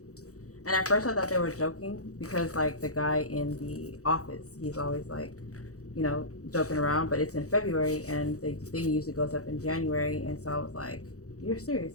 And at first I thought they were joking because like the guy in the office, he's always like, you know, joking around, but it's in February and the thing usually goes up in January. And so I was like, you're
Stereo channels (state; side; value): late; right; 0.66 ms